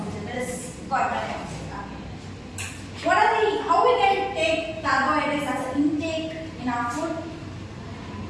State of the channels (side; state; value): both; identical; correlation 1.00